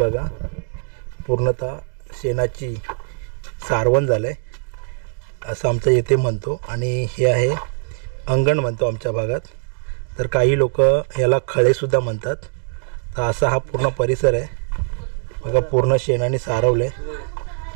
पूर्णतः शेणाची सारवण झालंय असं आमचं येथे म्हणतो, आणि हे आहे अंगण म्हणतो आमच्या भागात। तर काही लोक याला खळेसुद्धा म्हणतात। तर असा हा पूर्ण परिसर आहे बघा, पूर्ण शेणाने सारवलं आहे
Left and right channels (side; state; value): left; silent; digital silence